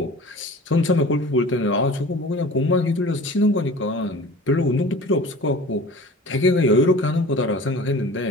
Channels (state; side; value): normal; both; correlation 0.41